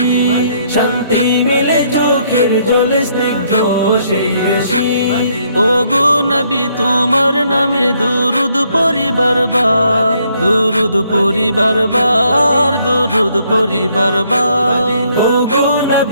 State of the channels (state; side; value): inverted; both; correlation -0.69